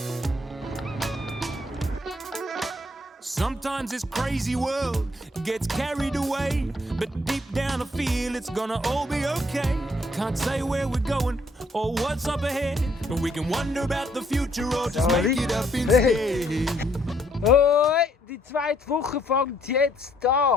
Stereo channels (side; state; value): both; normal; correlation 0.68